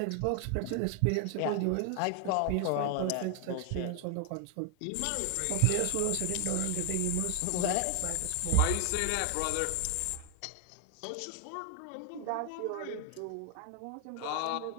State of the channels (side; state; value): both; different; correlation 0.01